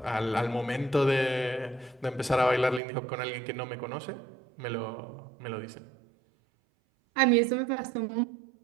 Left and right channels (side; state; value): left; drops out; at 2.8 s